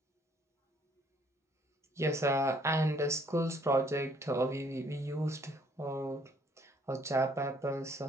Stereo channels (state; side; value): normal; both; correlation 0.63